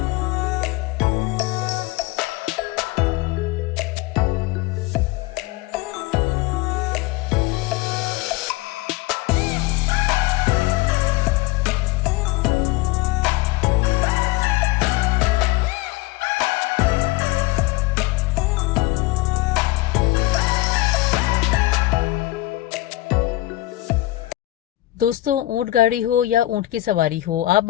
दोस्तों ऊँट गाड़ी हो या ऊँट की सवारी हो, आप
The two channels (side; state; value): right; quieter; 18.0 dB